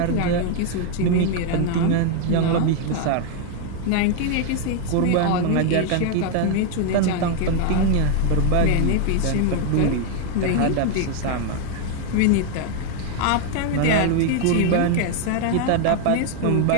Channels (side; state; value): both; different; correlation 0.01